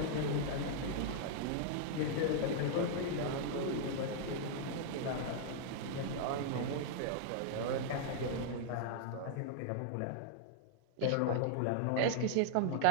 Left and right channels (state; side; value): different; both; correlation -0.01